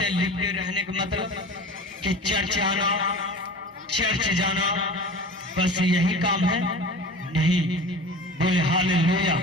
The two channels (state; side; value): normal; both; correlation 0.37